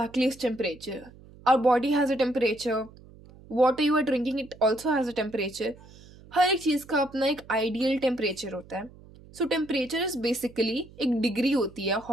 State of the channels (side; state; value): right; noise; hum, 22 dB below the sound